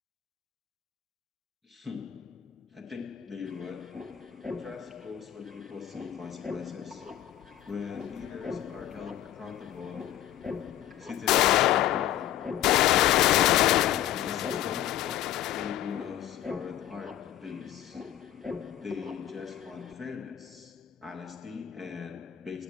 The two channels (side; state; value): right; quieter; 12.3 dB